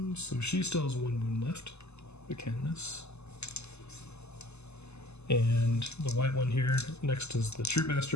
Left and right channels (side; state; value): right; late; 0.80 ms